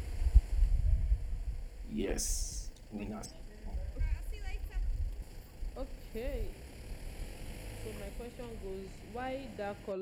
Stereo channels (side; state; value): both; identical; correlation 1.00